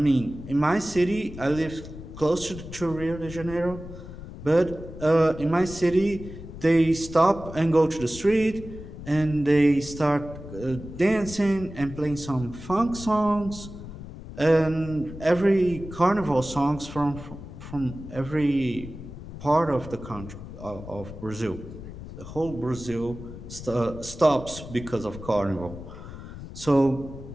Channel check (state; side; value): noise; left; rumble, 12 dB below the sound